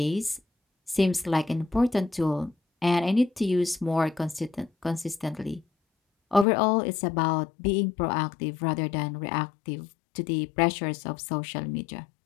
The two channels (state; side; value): drops out; right; at 6.5 s